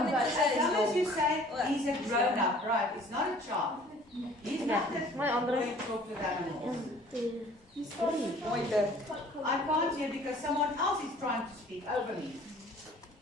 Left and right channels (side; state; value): both; normal; correlation 0.52